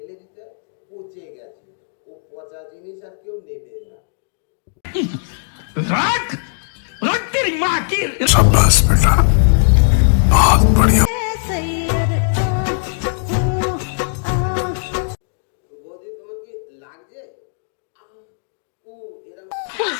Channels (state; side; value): silent; right; digital silence